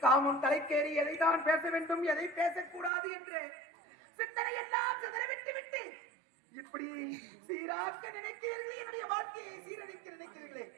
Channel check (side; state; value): left; drops out; at 2.9 s